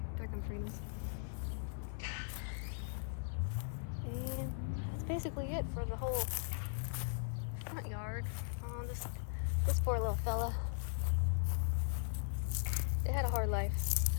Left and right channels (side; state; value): right; silent; 52 dB below the other